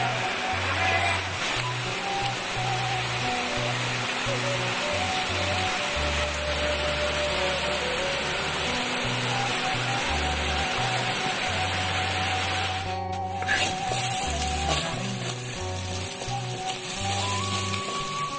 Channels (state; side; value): identical; both; correlation 1.00